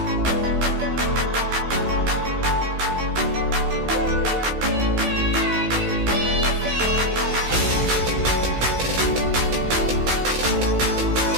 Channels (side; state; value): left; late; 16 ms